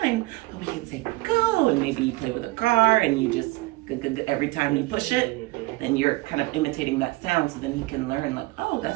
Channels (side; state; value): left; quieter; 21.2 dB